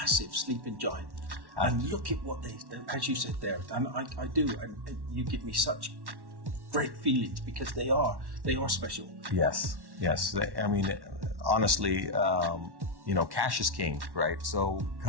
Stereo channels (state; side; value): late; left; 1.1 ms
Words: sleeping giant. And look at what as you said there, and I do, and you give me such great feelings because they are special. Yes. I mean, honestly, cash is king, right? So